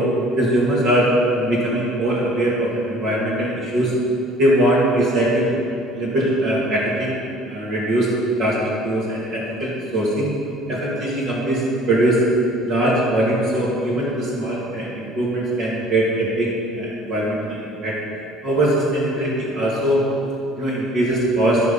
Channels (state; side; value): normal; both; correlation 0.51